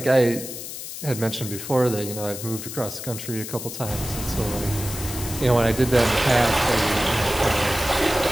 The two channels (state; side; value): noise; left; hiss, 9 dB below the sound